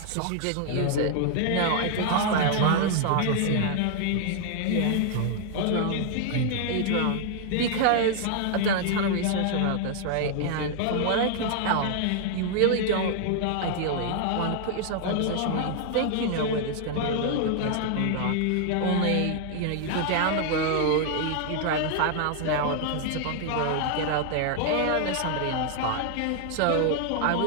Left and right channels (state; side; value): different; both; correlation 0.00